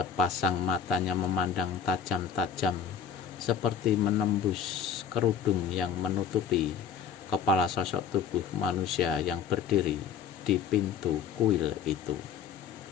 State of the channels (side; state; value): right; quieter; 7.4 dB